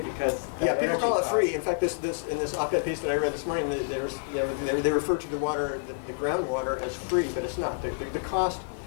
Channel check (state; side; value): silent; right; digital silence